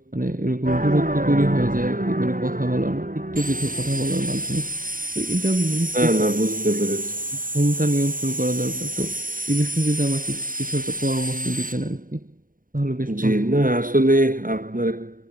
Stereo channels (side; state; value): left; late; 0.40 ms